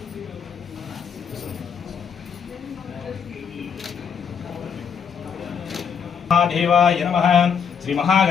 देवाय नमः श्री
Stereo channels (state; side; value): quieter; right; 7.0 dB